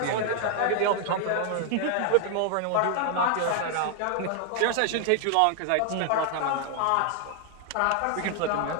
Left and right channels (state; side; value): different; both; correlation 0.00